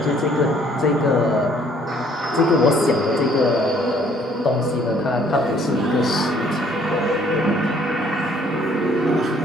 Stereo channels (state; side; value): normal; both; correlation 0.61